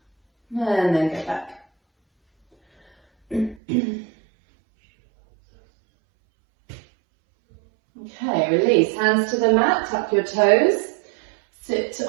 And then go back. Okay, release. Hands to the mat, tuck your toes. Sit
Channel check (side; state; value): left; drops out; at 3.6 s